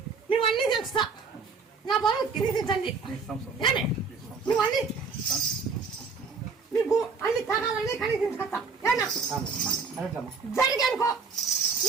నువ్వన్నీ తెలుస్తా. నా బరువు తిరిగించండి, నువ్వన్నీ నీకు అన్ని తరాలన్నీ కనిపించుకొస్తా. జరిగి అనుకో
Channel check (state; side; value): quieter; left; 4.9 dB